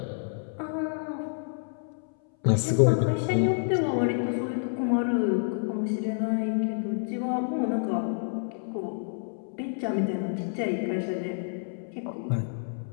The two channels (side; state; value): right; silent; 59 dB below the other